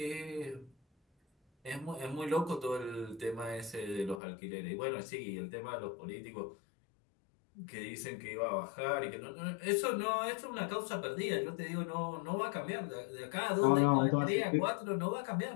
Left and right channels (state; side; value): drops out; right; at 4.2 s